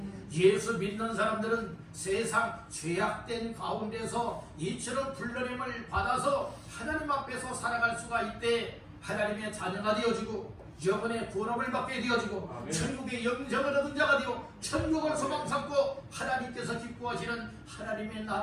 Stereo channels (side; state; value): both; identical; correlation 1.00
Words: 예수 믿는 사람들은 세상 죄악된 가운데서 이처럼 불러냄을 받아서 하나님 앞에서 살아갈 수가 있대 하나님의 자녀가 되어지고 영혼의 구원을 받게 되어지고 천국의 영생을 얻은 자가 되어 천국을 소망 삼고 하나님께서 기뻐하시는 하나님의